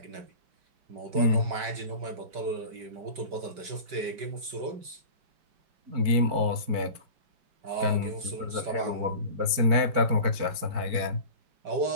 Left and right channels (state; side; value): late; left; 4.6 ms